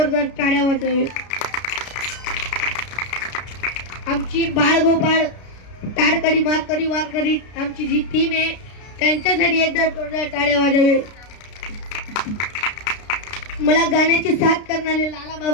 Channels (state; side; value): late; right; 33 ms